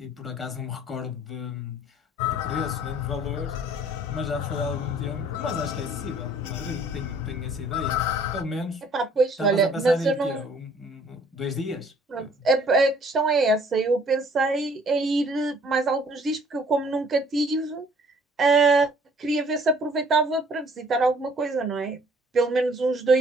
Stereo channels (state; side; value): normal; both; correlation 0.57